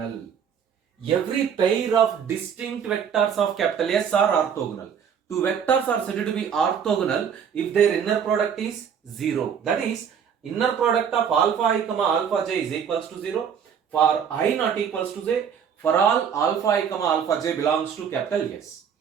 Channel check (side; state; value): left; quieter; 7.6 dB